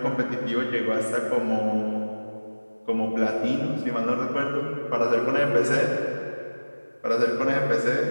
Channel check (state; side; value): inverted; both; correlation -1.00